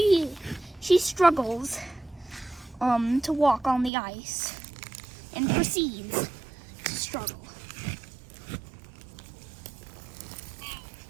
struggles to walk on the ice and proceeds to struggle.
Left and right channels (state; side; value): drops out; left; at 3.9 s